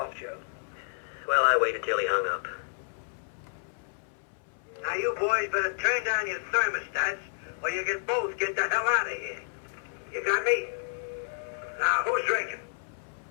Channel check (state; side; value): silent; right; 58 dB below the other